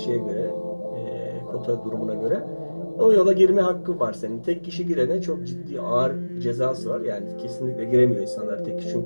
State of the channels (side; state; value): both; inverted; correlation -1.00